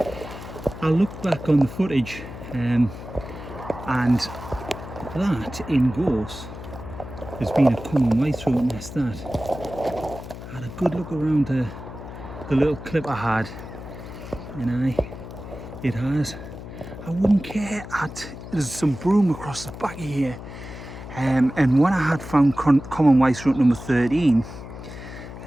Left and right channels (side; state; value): left; noise; hum, 12 dB below the sound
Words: I looked back on the footage and that in Gorse has been a common white-throat nest. That I had a good look around the little clip I had, and it has. I wouldn't care. There's some broom across the back of here, and when I had found common white-throat number 13,